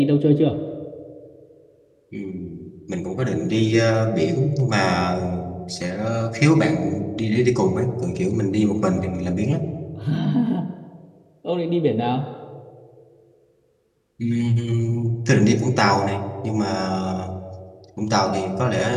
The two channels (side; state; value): both; identical; correlation 1.00